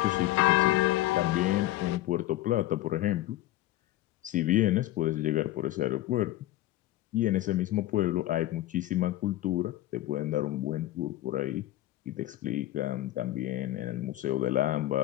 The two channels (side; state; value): right; quieter; 15.5 dB